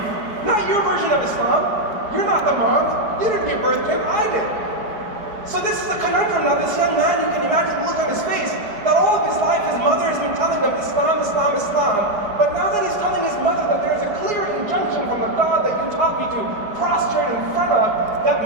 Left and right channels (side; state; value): left; late; 4.8 ms